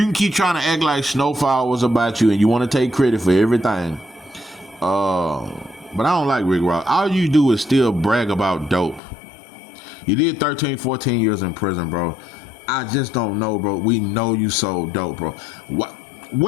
can keep trying to act like Snowfall was about you and you want to take credit for everything. But I don't like Rick Ross. All you do is still brag about dope. You did 13, 14 years in prison, bro. I just don't know, bro. We know you sold dope, bro.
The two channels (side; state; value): right; drops out; at 9.0 s